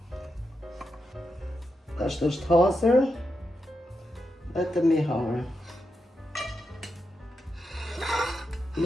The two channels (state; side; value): normal; both; correlation 0.86